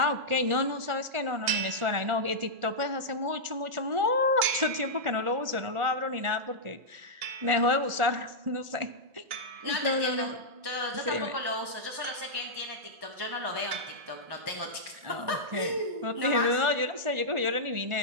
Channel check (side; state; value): left; late; 1.4 ms